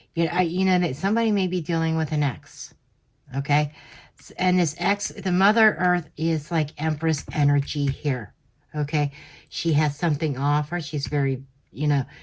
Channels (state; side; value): identical; both; correlation 1.00